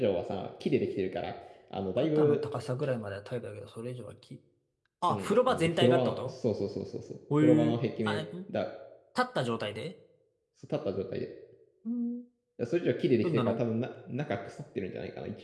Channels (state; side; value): identical; both; correlation 1.00